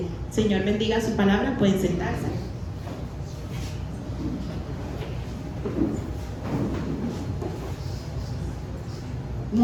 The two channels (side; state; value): both; identical; correlation 1.00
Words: Señor, bendiga su palabra. Pueden sentarse.